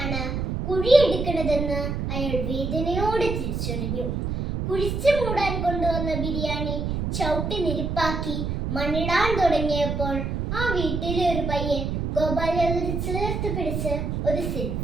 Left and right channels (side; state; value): right; noise; rumble, 2 dB below the sound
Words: കുഴിയെടുക്കണതെന്ന് അയാൾ വേദനയോടെ തിരിച്ചറിഞ്ഞു. കുഴിച്ചു മൂടാൻ കൊണ്ടുവന്ന ബിരിയാണി ചവിട്ടി നിരപ്പാക്കി മണ്ണിടാൻ തുടങ്ങിയപ്പോൾ ആ വീട്ടിലെ ഒരു പയ്യൻ ഗോപാൽ യാദവിനെ ചേർത്ത് പിടിച്ച് ഒരു